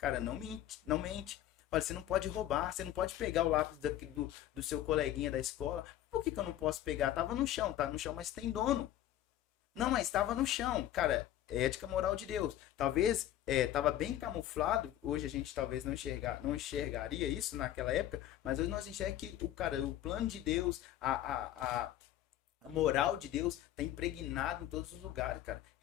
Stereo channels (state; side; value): quieter; right; 12.6 dB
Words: não mente, não mente. Olha, você não pode roubar, você não pode pegar o lápis do seu coleguinha da escola. Por que eu não posso pegar? Tava no chão, tá no chão, mas tem dono. Não, mas estava no chão. Cara, é ética moral de Deus. Talvez estava bem camuflado. Hoje a gente talvez não enxergaria isso naquela época, mas hoje nós enxergamos que o plano de Deus, a moral de Deus está impregnado em todos os lugares, cara.